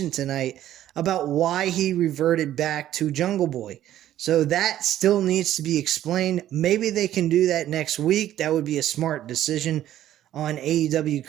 tonight about why he reverted back to Jungle Boy. So that still needs to be explained. Maybe they can do that next week. That would be a smart decision on AEW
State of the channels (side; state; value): left; quieter; 12.5 dB